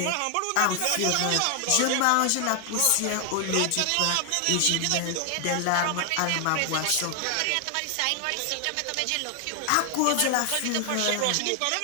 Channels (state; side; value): different; both; correlation 0.00